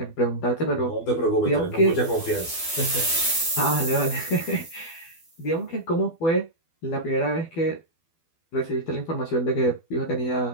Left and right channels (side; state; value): right; late; 12 ms